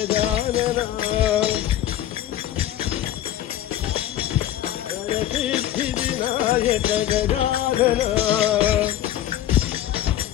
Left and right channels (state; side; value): quieter; right; 12.4 dB